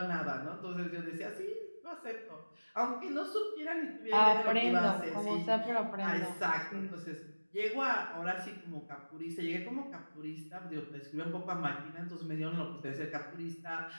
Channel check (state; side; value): inverted; both; correlation -1.00